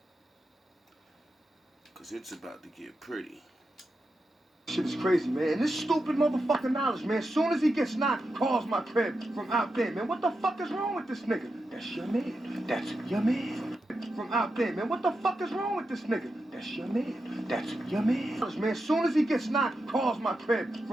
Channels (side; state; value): both; normal; correlation 0.88